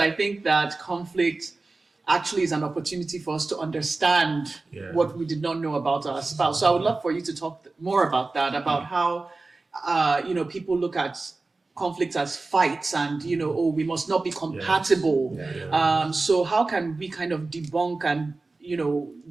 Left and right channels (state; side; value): quieter; left; 3.5 dB